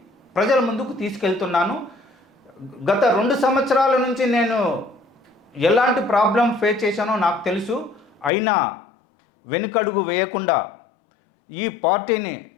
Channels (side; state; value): right; drops out; at 8.3 s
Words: ప్రజల ముందుకు తీసుకెళ్తున్నాను. గత 2 సంవత్సరాల నుంచి నేను ఎలాంటి ప్రాబ్లం ఫేస్ చేశానో నాకు తెలుసు. అయినా వెనుకడుగు వేయకుండా ఈ పార్టీని